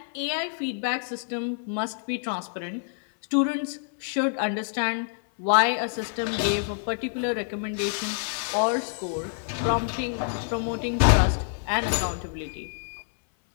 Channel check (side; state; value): right; silent; 60 dB below the other